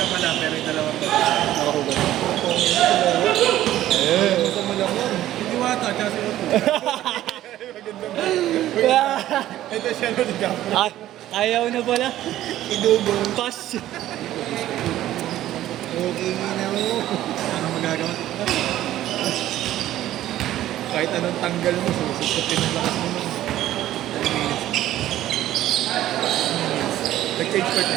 pala, pero yung dalawang Nakahugas. Masama lang yun. Hindi wata, tsaka si Otto. Ito siya no, di Gapo. Ayaw na pala. Idugong. Pass. Okay na mo. Ano magagawa? Kahit anong tanggal mo, sususutin ang lakas mo nun. 10 minutes. Nag-change part na.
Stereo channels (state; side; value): quieter; left; 13.6 dB